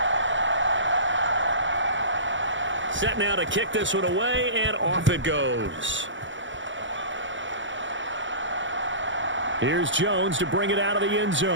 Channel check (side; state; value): left; late; 0.55 ms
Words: Set now to kick this one away, and off it goes. Here's Jones to bring it out of the end